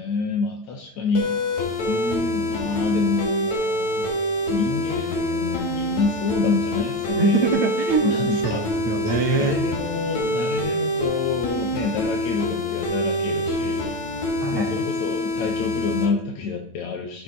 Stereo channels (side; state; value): right; late; 9.0 ms